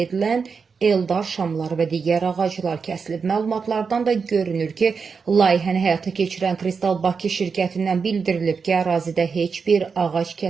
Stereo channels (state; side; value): quieter; left; 5.4 dB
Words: edilən Eldar şamları və digər ağaclar kəsilib. Məlumatlardan da görünür ki, layihəni həyata keçirən Kristal Bakı şirkətindən bildirilib ki, ərazidə heç bir ağac